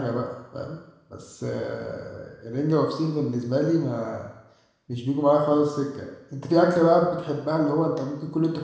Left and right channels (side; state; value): both; identical; correlation 1.00